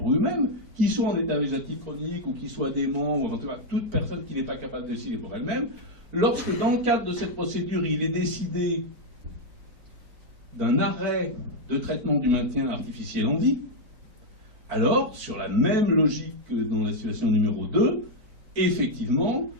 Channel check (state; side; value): late; left; 4.4 ms